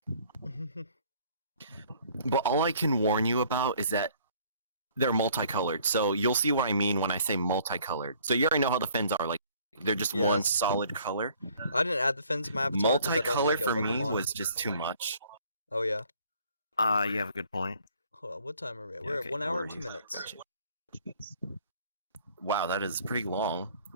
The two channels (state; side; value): inverted; both; correlation -0.57